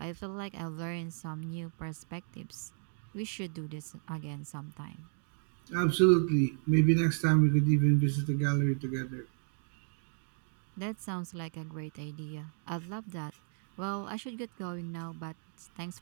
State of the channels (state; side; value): silent; left; 55 dB below the other